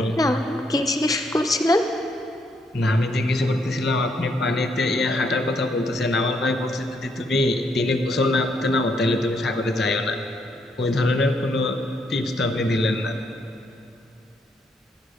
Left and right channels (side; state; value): both; normal; correlation 0.74